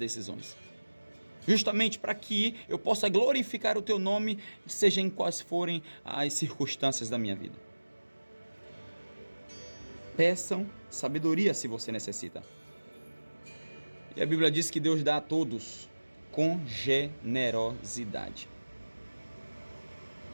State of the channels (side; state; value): both; inverted; correlation -1.00